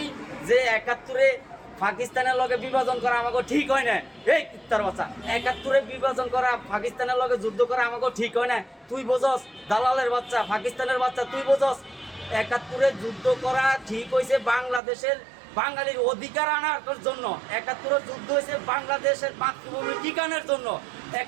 যে ৭১-এ পাকিস্তানের লগে বিভাজন করা আমাকে ঠিক হয় না। এই কুত্তার বাচ্চা, ৭১-এ বিভাজন করা পাকিস্তানের লগে যুদ্ধ করা আমাকে ঠিক হয় না। তুই বোঝস দালালের বাচ্চা, পাকিস্তানের বাচ্চা, তুই বোঝস ৭১-এ যুদ্ধ করা ঠিক হয়েছে বাংলাদেশের বাঙালির অধিকার আনার জন্য। ৭১-এ যুদ্ধ হয়েছে বাংলাদেশের মাতৃভূমি ঠিকানার জন্য।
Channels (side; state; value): left; drops out; at 14.8 s